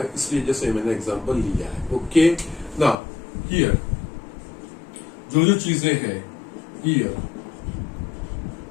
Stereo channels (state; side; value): drops out; right; at 3.0 s